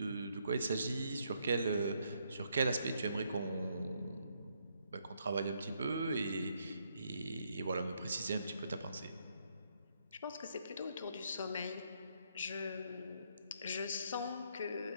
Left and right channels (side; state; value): both; inverted; correlation -0.74